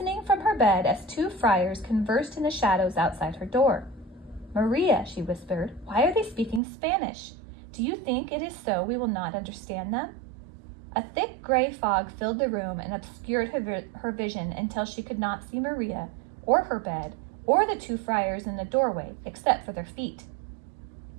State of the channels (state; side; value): drops out; left; at 6.6 s